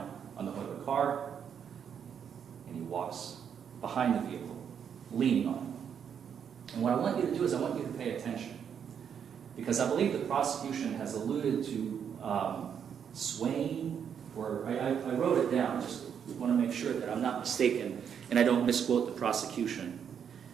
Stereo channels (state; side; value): quieter; left; 7.9 dB